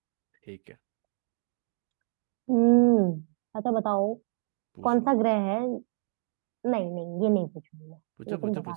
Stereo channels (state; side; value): silent; left; 59 dB below the other